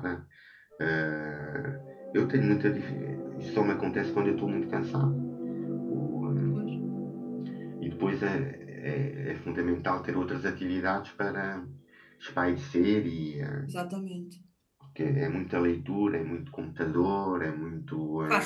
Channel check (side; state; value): both; identical; correlation 1.00